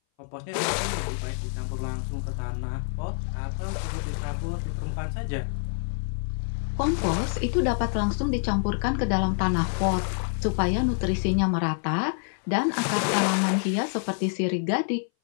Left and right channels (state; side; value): silent; right; 58 dB below the other